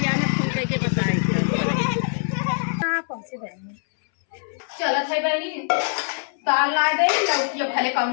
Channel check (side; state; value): right; silent; 63 dB below the other